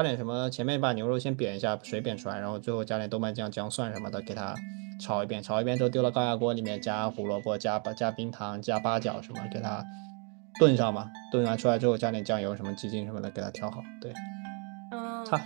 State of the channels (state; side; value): quieter; left; 38.5 dB